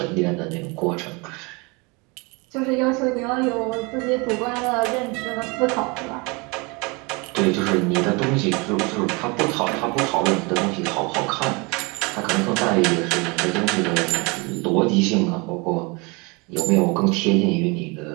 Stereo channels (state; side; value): quieter; left; 28.2 dB